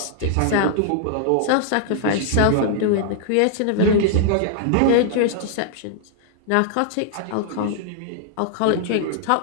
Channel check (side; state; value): both; different; correlation -0.01